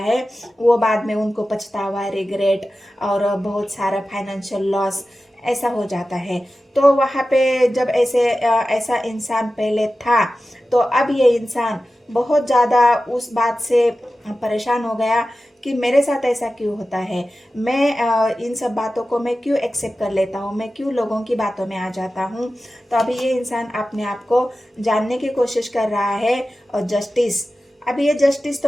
वो बाद में उनको पछतावा, रिग्रेट और बहुत सारा फाइनेंशियल लॉस ऐसा हो जाता है। तो वहाँ पे जब ऐसा इंसान पहले था तो अब ये इंसान बहुत ज़्यादा उस बात से परेशान हो गया कि मेरे साथ ऐसा क्यों होता है, मैं इन सब बातों को मैं क्यों एक्सेप्ट कर लेता हूँ, मैं क्यों लोगों की बातों में आ जाता हूँ। तो अभी ये इंसान अपने आप को जानने की कोशिश कर रहा है और जस्टिस, अभी ये जस्टिस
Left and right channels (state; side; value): normal; both; correlation 0.94